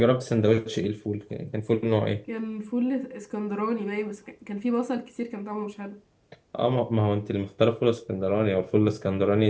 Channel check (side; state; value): both; identical; correlation 1.00